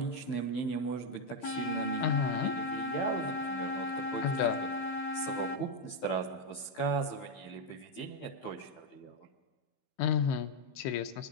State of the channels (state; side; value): late; right; 16 ms